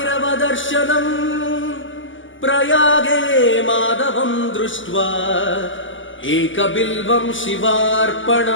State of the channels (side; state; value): right; late; 0.56 ms